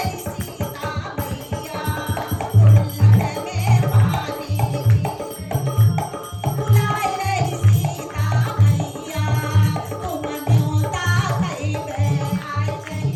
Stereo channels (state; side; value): identical; both; correlation 1.00